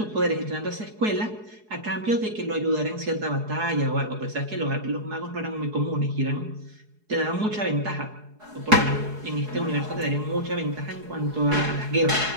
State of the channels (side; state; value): left; late; 4.7 ms